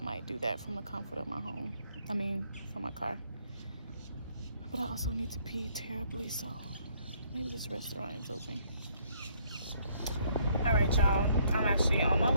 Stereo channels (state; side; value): inverted; both; correlation -0.66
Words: might do that from the comfort of my home. From my car. But I also need to pee terribly, so maybe this restaurant is open. Alright, y'all. I'm actually on my